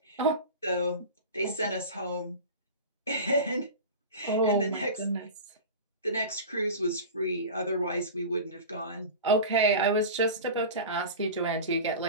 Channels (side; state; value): both; inverted; correlation -0.31